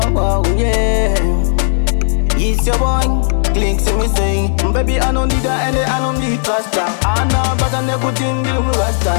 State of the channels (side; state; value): right; silent; 70 dB below the other